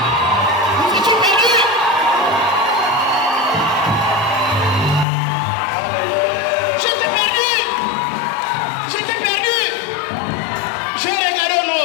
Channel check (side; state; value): right; drops out; at 5.1 s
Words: Nous étions perdus. J'étais perdu. J'étais perdu. Je regardais au